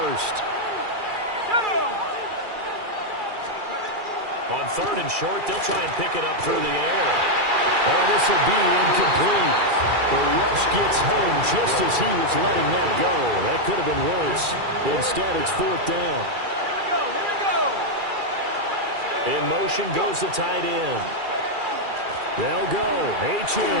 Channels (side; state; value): left; late; 2.4 ms